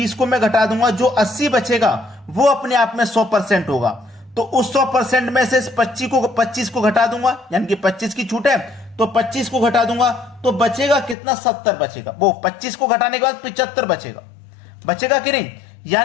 को मैं घटा दूंगा, जो 80 बचेगा वो अपने आप में 100% होगा। तो उस 100% में से इस 25 को घटा दूंगा, यानी कि 25 की छूट है तो 25 को घटा दूंगा, तो बचेगा कितना 70 बचेगा। वो 25 को घटाने के बाद 75 बचेगा, बचेगा कि नहीं?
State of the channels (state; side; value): drops out; right; at 11.2 s